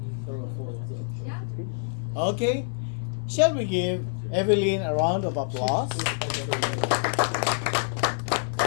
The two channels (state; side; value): silent; right; 55 dB below the other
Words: Okay. Shall we give Evelyn a round of applause?